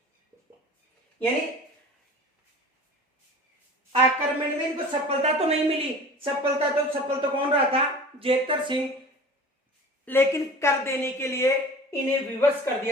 यानी आक्रमण में इनको सफलता तो नहीं मिली, सफल तो कौन रहा था? जेतर सिंह, लेकिन कर देने के लिए इन्हें विवश कर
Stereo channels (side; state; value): both; normal; correlation 0.40